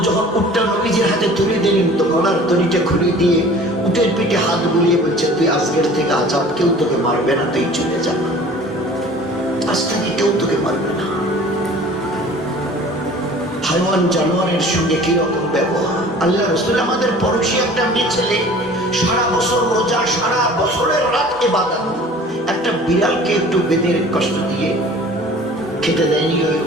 যখন উটটা নবীজির হাতে তুলে দিলেন, তো গলার দড়িটা খুলে দিয়ে উটের পিঠে হাত বুলিয়ে বলছে তুই আজকের থেকে আজাদ, কেউ তোকে মারবে না, তুই চলে যা, আজ থেকে কেউ তোকে মারবে না। হাইওয়ান জানোয়ারের সঙ্গে কিরকম ব্যবহার! আল্লাহ রাসূল আমাদের পড়োশী একটা মেয়ে ছেলে, সারা বছর রোজা, সারা বছরের রাত ইবাদত, একটা বিড়ালকে একটু বেঁধে কষ্ট দিয়ে খেতে দেয়নি, ওই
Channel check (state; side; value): normal; both; correlation 0.46